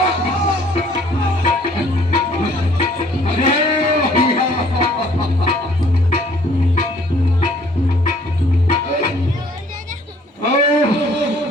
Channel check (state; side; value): normal; both; correlation 0.59